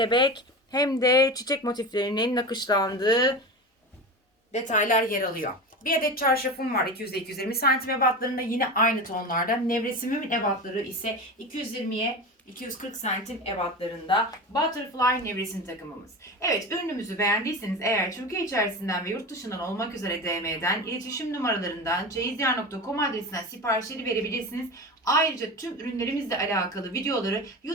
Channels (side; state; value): both; normal; correlation 0.27